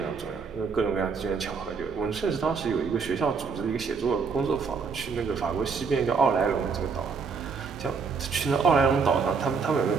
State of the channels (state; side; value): quieter; left; 5.2 dB